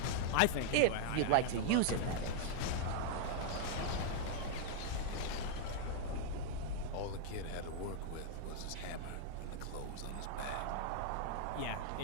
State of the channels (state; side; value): different; both; correlation -0.01